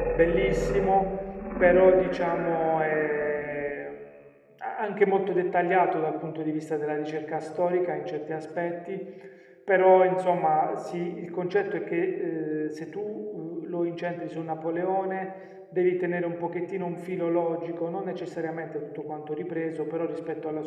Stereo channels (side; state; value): both; identical; correlation 1.00